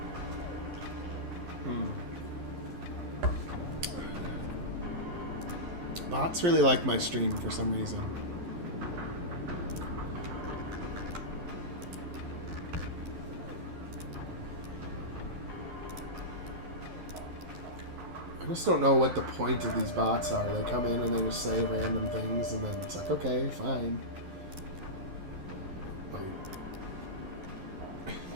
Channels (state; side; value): late; left; 11 ms